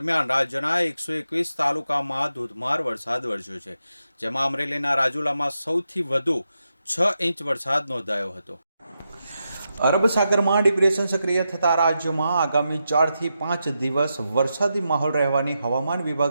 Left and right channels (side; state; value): both; inverted; correlation -0.87